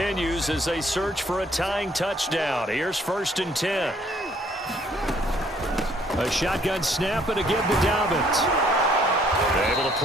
as they search for a tying touchdown. Here's 1st and 10. A shotgun snap and a give to Dobbins. Able to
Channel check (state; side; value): normal; both; correlation 0.63